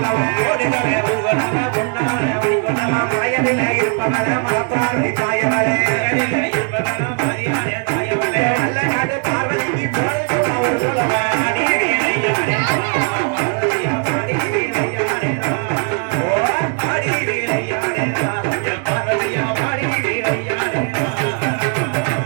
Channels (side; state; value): left; quieter; 39.8 dB